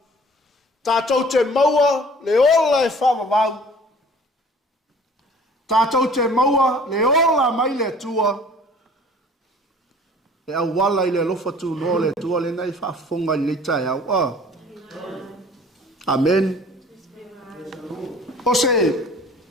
Tātou te maua le ola e wha vavau. Tātou te maua le ola mai le tua. E au wala i le lofa tu no le tua le nei whaafonga i le tai au. Amen. O se,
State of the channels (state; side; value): normal; both; correlation 0.49